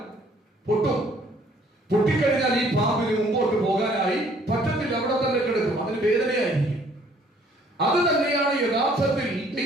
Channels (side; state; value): both; normal; correlation 0.60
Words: പൊട്ടിക്കഴിഞ്ഞാൽ ഈ പാമ്പിന് മുമ്പോട്ട് പോകാനായി പറ്റത്തില്ല, അവിടെ തന്നെ കിടക്കും, അതിന് വേദനയായിരിക്കും. അത് തന്നെയാണ് യഥാർത്ഥത്തിൽ